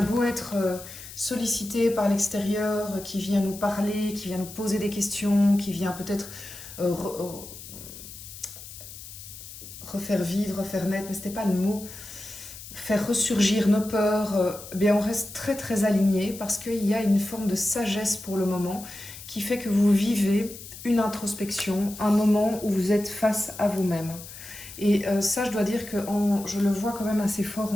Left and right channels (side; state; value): left; noise; hiss, 14 dB below the sound